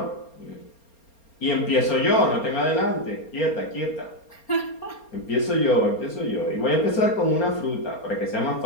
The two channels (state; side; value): late; right; 4.3 ms